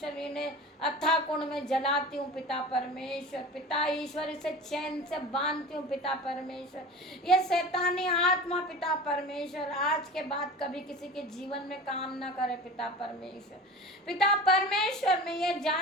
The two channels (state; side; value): normal; both; correlation 0.35